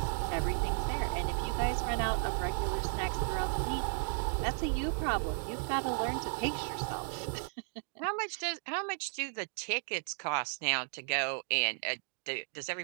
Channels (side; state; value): left; silent; 55 dB below the other